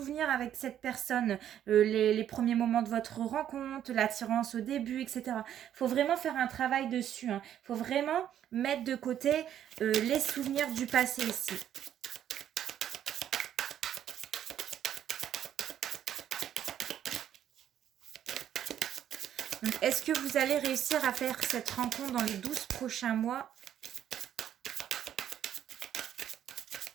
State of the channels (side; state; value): left; quieter; 10.5 dB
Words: avec cette personne, les premiers moments de votre rencontre, l'attirance au début, etc. Il faut vraiment faire un travail dessus. Il faut vraiment mettre de côté les souvenirs du passé ici. Est-ce que vous allez réussir à faire cette rencontre dans les 12 prochains mois